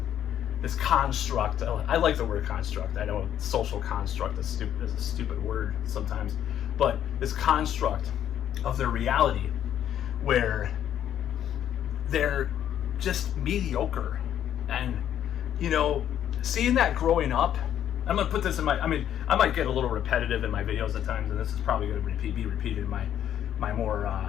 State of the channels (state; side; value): quieter; right; 10.4 dB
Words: this construct. I like the word construct. I know social construct is a stupid word sometimes, but this construct of their reality where they're just mediocre. And, you know, seeing that growing up, I'm going to put this in I might get a little repetitive in my videos at times, and this is probably going to be repeated in my more